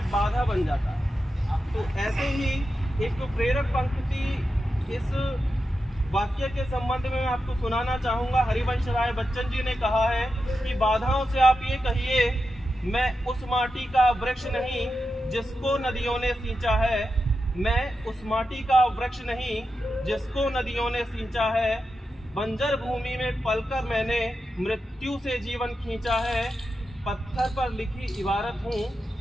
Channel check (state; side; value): normal; both; correlation 0.89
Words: बाधा बन जाता है। तो ऐसे ही एक तो प्रेरक पंक्ति इस वाक्य के संबंध में मैं आपको सुनाना चाहूँगा। हरिवंश राय बच्चन जी ने कहा है कि बाधाओं से आप ये कहिए मैं उस माटी का वृक्ष नहीं जिसको नदियों ने सींचा है। मैं उस माटी का वृक्ष नहीं जिसको नदियों ने सींचा है। बंजर भूमि में पलकर मैंने मृत्यु से जीवन खींचा है। पत्थर पर लिखी इबारत हूँ,